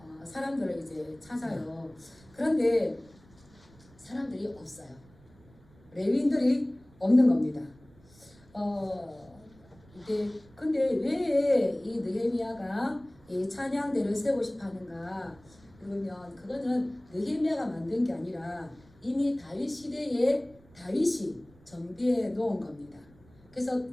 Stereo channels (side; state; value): right; noise; rumble, 26 dB below the sound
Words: 사람들을 이제 찾아요. 그런데 사람들이 없어요. 레위인들이 없는 겁니다. 근데 왜 이 느헤미야가 이 찬양대를 세우고 싶어 하는가? 그러면 그거는 느헤미야가 만든 게 아니라 이미 다윗 시대에 다윗이 정비해 놓은 겁니다. 그래서